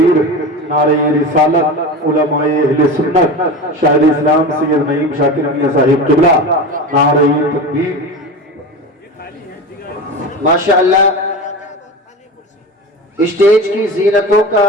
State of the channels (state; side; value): normal; both; correlation 0.27